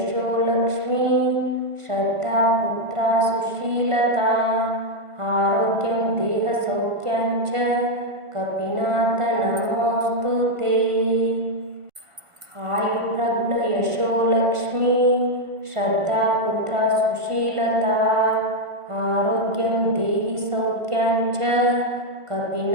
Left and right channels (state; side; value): late; left; 1.5 ms